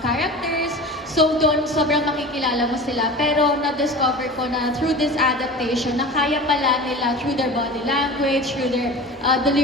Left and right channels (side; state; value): both; normal; correlation 0.35